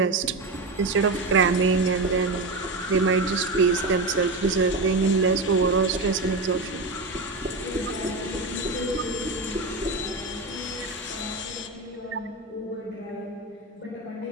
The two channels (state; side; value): quieter; left; 3.1 dB